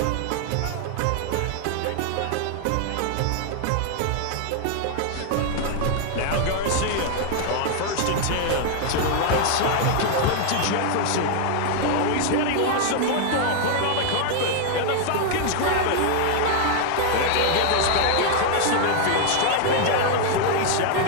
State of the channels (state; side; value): different; both; correlation 0.00